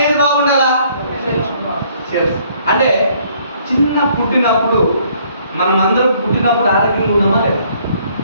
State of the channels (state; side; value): inverted; both; correlation -0.63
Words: ఏది బాగుండాలా? సెల్స్. అంటే చిన్న పుట్టినప్పుడు మనం అందరం పుట్టినప్పుడు ఆరోగ్యంగా ఉన్నామా లేదా?